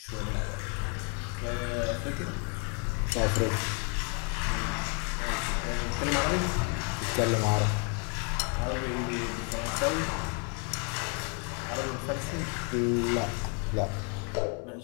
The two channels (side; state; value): right; quieter; 37.7 dB